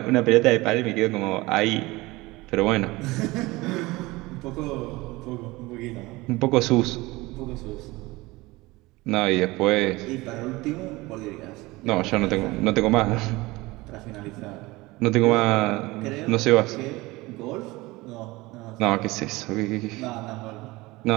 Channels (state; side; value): quieter; left; 21.2 dB